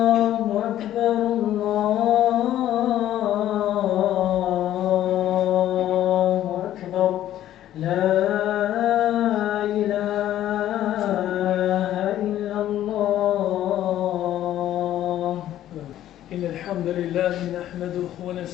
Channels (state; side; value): quieter; right; 12.5 dB